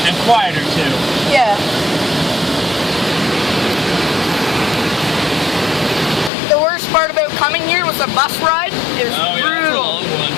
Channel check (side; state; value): right; drops out; at 6.3 s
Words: and quieter too. Yeah. The worst part about coming here was the bus ride. It was Oh yeah, that's a brutal. long one.